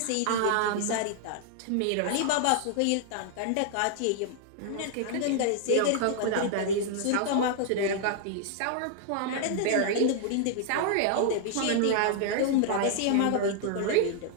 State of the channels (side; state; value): both; different; correlation -0.01